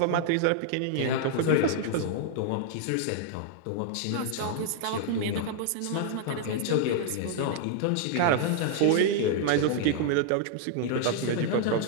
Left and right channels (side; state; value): both; different; correlation -0.01